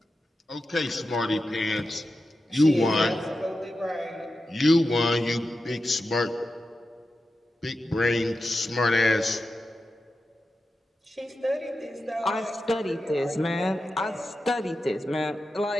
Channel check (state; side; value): normal; both; correlation 0.91